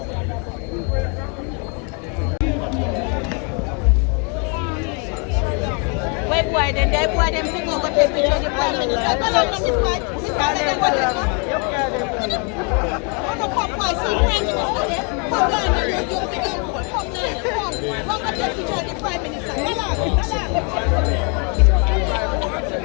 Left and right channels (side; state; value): right; quieter; 36.1 dB